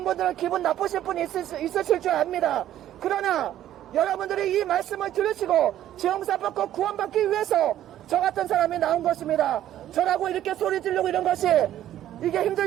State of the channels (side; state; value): left; quieter; 12.2 dB